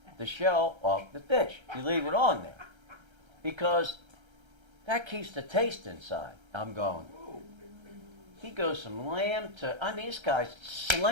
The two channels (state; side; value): late; left; 1.3 ms